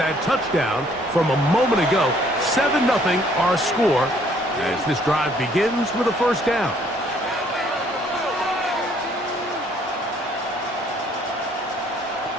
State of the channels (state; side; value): normal; both; correlation 0.63